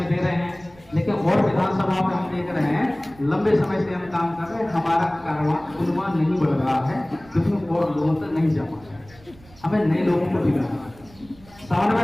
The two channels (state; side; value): noise; right; rumble, 25 dB below the sound